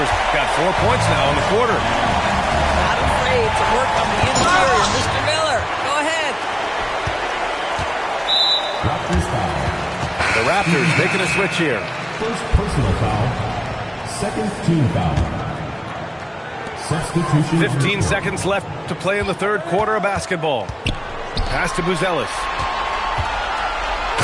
got 4 points now in the quarter. Not afraid to work on the interior. Mr. Miller, go ahead. Raptors foul. The Raptors making a switch here. First personal foul. Second team foul. Substitution. 15 seconds left to play in the third quarter of basketball. Pass to Buzelis.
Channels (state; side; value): identical; both; correlation 1.00